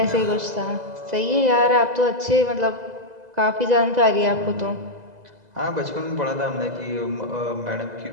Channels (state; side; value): late; left; 2.0 ms